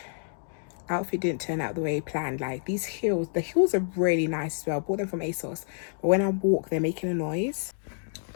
Outfit didn't turn out the way planned. Like, these heels, the heels are really nice as well. I bought them from ASOS, but when I walk, they're making a noise.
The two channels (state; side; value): silent; right; digital silence